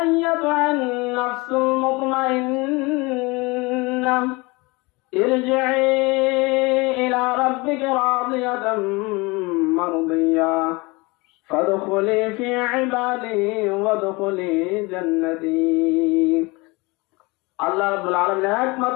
নাফসুল মুতমাইন্না ইরজিই ইলা রাব্বিকা রাদিয়াতাম মারদিয়া ফাদখুলি ফি ইবাদি ওয়াদখুলি জান্নাতি। আল্লাহ রাব্বুল আলামিন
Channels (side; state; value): right; quieter; 25.2 dB